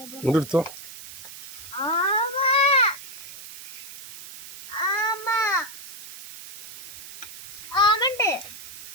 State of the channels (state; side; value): noise; right; hiss, 13 dB below the sound